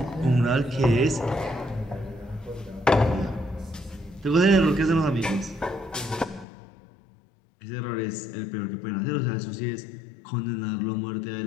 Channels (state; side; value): drops out; right; at 6.5 s